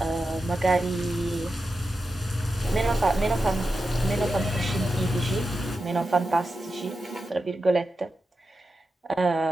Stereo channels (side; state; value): both; normal; correlation 0.90